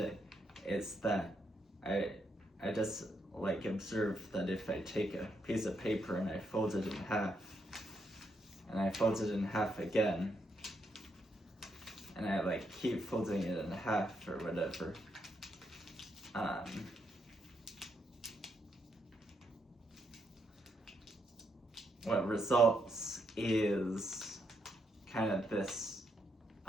Is that I just like observe that if I take a piece of paper and I fold it in half, and I fold it in half again, and I like keep folding it in half or whatever, what results is kind of this,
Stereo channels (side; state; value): both; normal; correlation 0.78